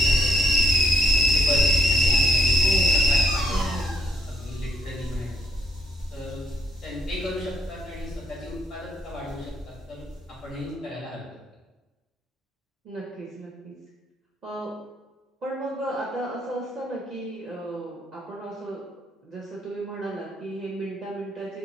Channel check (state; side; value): normal; both; correlation 0.72